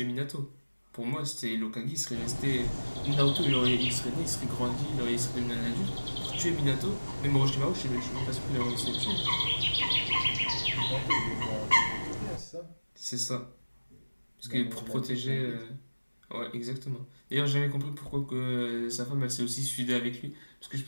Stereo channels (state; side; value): inverted; both; correlation -1.00